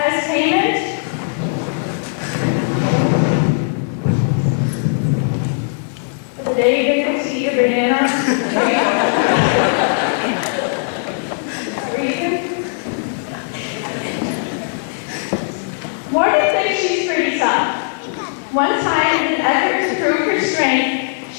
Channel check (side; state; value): right; silent; 67 dB below the other